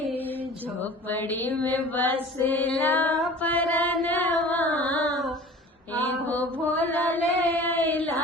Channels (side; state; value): both; normal; correlation 0.42